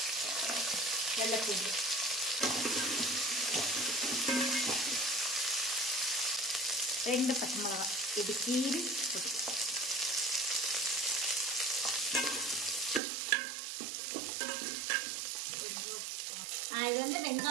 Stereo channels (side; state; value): left; drops out; at 13.0 s